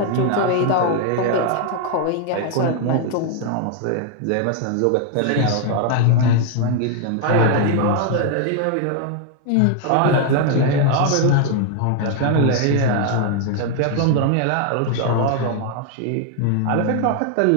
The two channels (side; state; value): both; different; correlation 0.00